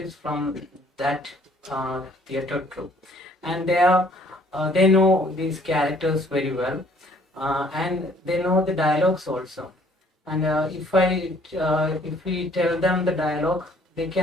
from that theatre troupe, and they know these characters very well, and they know the dialogues also. And if we tell them the dialogue, they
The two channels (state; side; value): normal; both; correlation 0.60